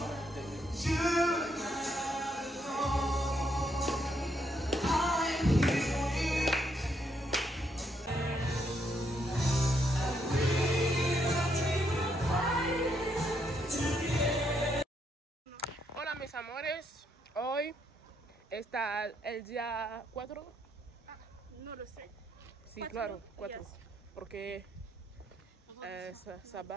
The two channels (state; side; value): normal; both; correlation 0.75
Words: Hola mis amores, hoy está el día 4. No lo sé. Sí, claro, 4. Porque